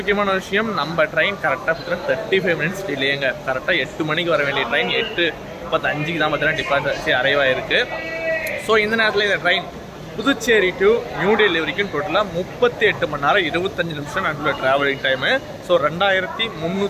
விஷயம், நம்ம ட்ரெயின் கரெக்டாக பார்த்தீங்கன்னா 35 மினிட்ஸ் டிலேங்க. கரெக்டாக 8 மணிக்கு வர வேண்டிய ட்ரெயின் 8:35 தான் பார்த்தீங்கன்னா டிபார்ச்சர் அரைவ் ஆயிருக்கு. ஸோ இந்த நேரத்தில் இந்த ட்ரெயின் புதுச்சேரி டு நியூ டெல்லி வரைக்கும் டோட்டலாக 38 மணி நேரம் 25 நிமிஷம் நடுவில் ட்ராவலிங் டைமு. ஸோ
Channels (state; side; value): identical; both; correlation 1.00